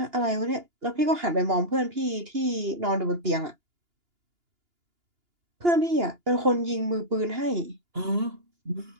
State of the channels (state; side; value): late; left; 2.9 ms